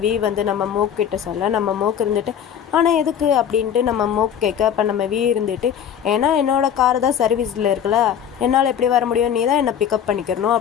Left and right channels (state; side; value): quieter; right; 8.9 dB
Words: வந்து நம்ம மோக் கிட்ட சொல்ல, நம்ம மோக் இருந்துட்டு, ஆனால் எதுக்கு அப்படின்ட்டு நம்ம மோக் கேட்க. அப்போ நம்ம இருந்துட்டு, ஏன்னா என்னோடய கார் தான் சர்வீஸில் இருக்குல்ல, என்னால் எப்படி வர முடியும், நீ தான் என்னை பிக்கப் பண்ணிக்கிறணும்